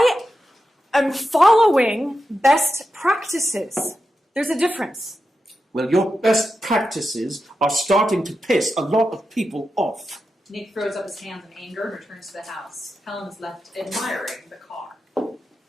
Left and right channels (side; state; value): both; normal; correlation 0.89